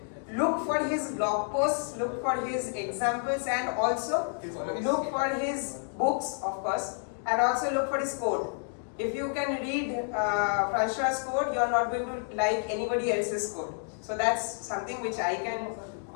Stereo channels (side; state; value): right; silent; 58 dB below the other